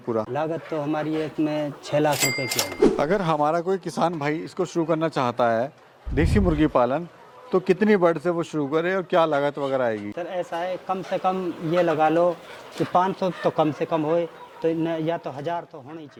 लागत तो हमारी इसमें 6 लाख रुपए की है। अगर हमारा कोई किसान भाई इसको शुरू करना चाहता है देसी मुर्गी पालन, तो कितनी बर्ड से वो शुरू करे और क्या लागत वगैरह आएगी? सर ऐसा है, कम से कम ये लगा लो कि 500 तो कम से कम होए, तो या तो 1000 तो होना ही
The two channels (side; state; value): both; identical; correlation 1.00